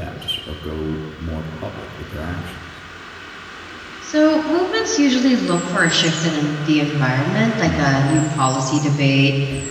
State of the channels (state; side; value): identical; both; correlation 1.00